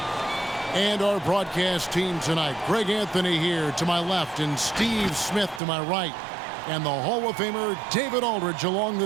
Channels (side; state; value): left; drops out; at 5.6 s